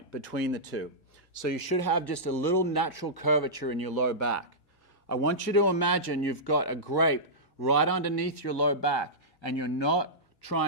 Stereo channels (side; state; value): both; normal; correlation -0.14